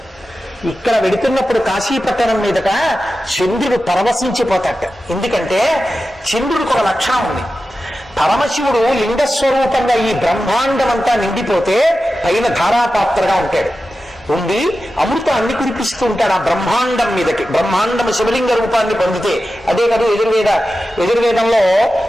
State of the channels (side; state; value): both; normal; correlation 0.93